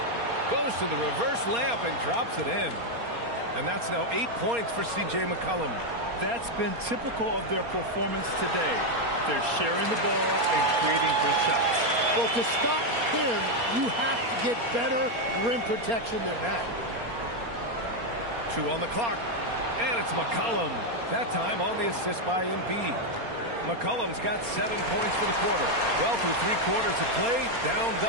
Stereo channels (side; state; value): left; late; 4.3 ms